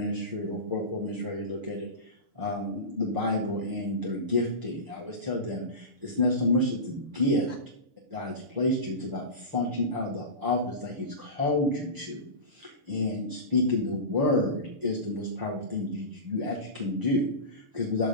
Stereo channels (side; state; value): left; late; 6.8 ms